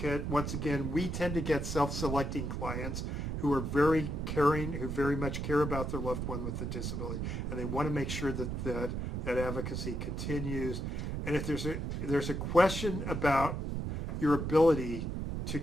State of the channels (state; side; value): noise; right; rumble, 3 dB below the sound